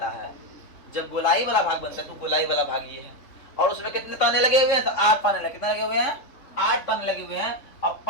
है, तो गोलाई वाला भाग ये है, और उसमें कितने ताने लगे हुए हैं? तो 8 ताने लगे। कितने लगे हुए हैं? 8 ताने लगे हुए हैं। अब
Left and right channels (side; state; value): right; late; 3.8 ms